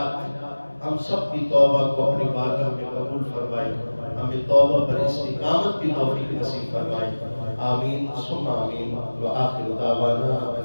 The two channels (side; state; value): both; inverted; correlation -1.00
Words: ہم سب کی توبہ کو اپنی بارگاہ میں قبول فرمائے، ہمیں توبہ پر استقامت کی توفیق نصیب فرمائے۔ آمین ثم آمین، وآخر دعوانا